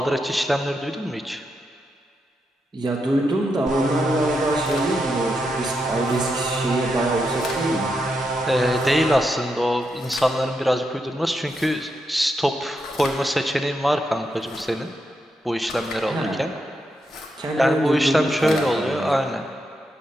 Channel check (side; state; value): both; normal; correlation 0.83